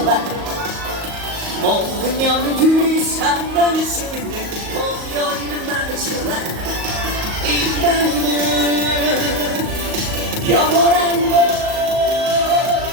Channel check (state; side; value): late; left; 38 ms